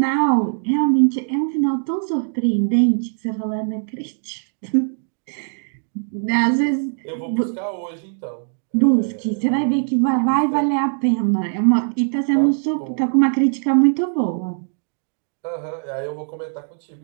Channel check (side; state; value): left; silent; digital silence